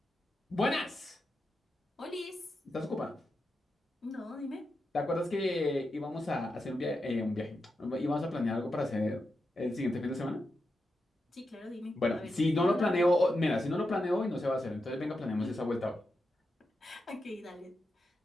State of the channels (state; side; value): normal; both; correlation 0.87